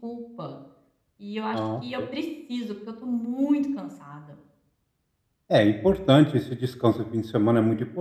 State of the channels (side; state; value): both; identical; correlation 1.00